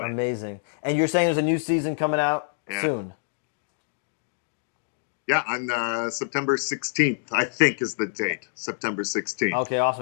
it. Amazing. And you're saying there's a new season coming out soon? Yeah, on September 16th, I think is the date. September 16th. Okay,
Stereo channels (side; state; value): right; silent; digital silence